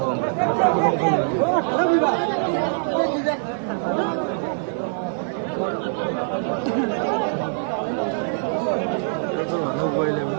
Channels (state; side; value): silent; left; digital silence